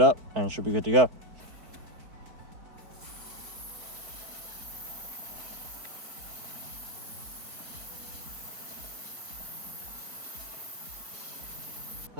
up, and it should be good to go.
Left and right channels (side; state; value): left; late; 4.2 ms